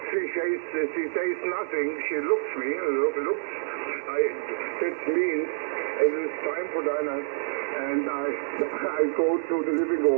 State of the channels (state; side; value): silent; left; digital silence